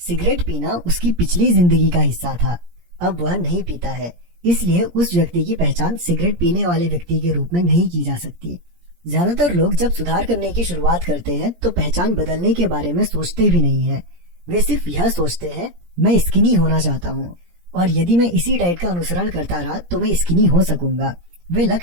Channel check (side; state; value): left; late; 17 ms